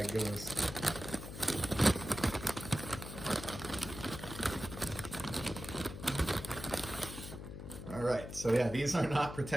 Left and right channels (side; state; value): left; noise; hum, 10 dB below the sound